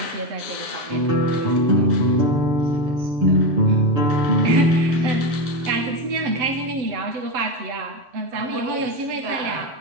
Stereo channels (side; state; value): left; late; 7.9 ms